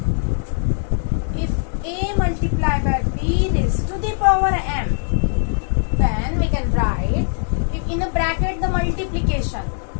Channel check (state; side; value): silent; right; digital silence